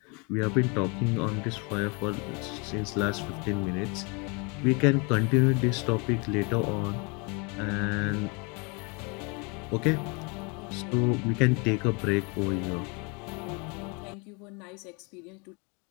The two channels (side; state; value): right; quieter; 31.6 dB